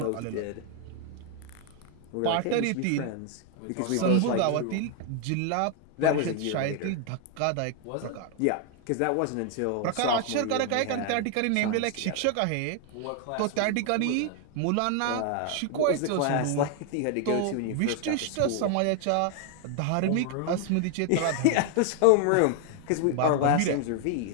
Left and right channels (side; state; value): both; different; correlation 0.00